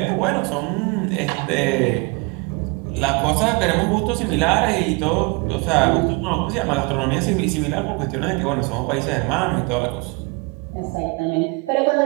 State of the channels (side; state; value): left; quieter; 28.9 dB